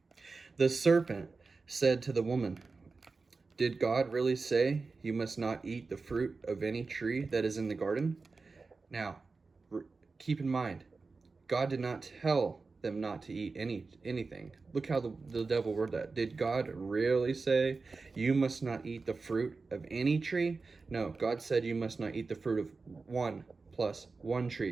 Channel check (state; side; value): quieter; left; 4.1 dB